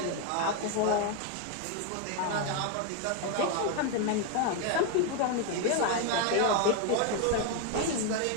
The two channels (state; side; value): different; both; correlation 0.01